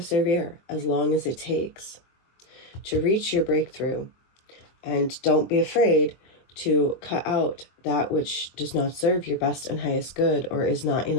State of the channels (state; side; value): late; right; 23 ms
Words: as long as it takes to reach your breakthrough. And don't be afraid to cut out that which does not serve your best and highest good or is not